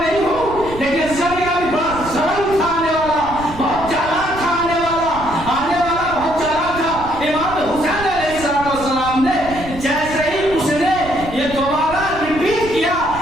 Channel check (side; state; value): right; noise; rumble, 13 dB below the sound